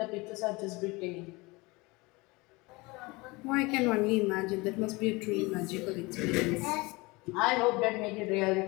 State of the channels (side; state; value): right; quieter; 24.1 dB